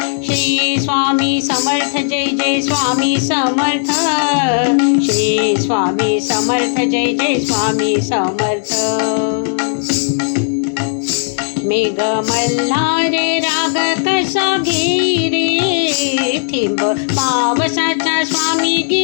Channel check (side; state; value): right; silent; digital silence